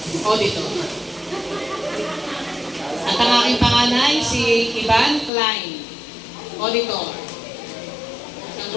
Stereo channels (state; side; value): drops out; right; at 5.3 s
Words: Auditor. At ang aking panganay, si Ivan Klein Auditor. Ang